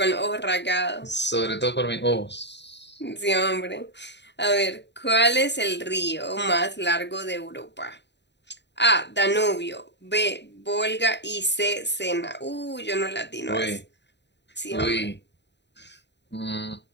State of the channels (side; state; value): right; late; 0.51 ms